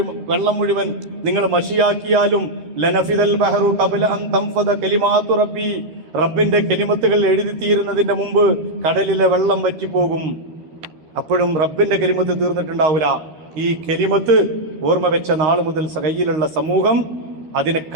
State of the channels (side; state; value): left; late; 13 ms